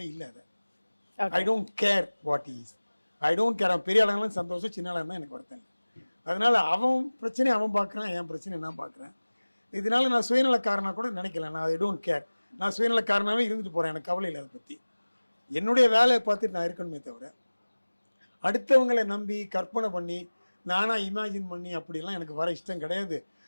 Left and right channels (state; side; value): inverted; both; correlation -1.00